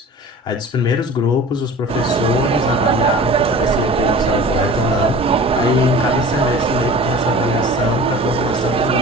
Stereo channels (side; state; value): both; normal; correlation 0.40